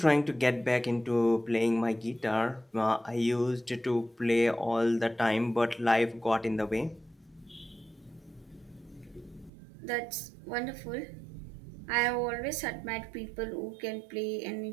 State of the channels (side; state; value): left; drops out; at 9.5 s